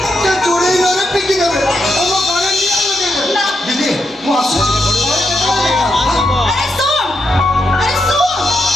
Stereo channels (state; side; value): normal; both; correlation 0.82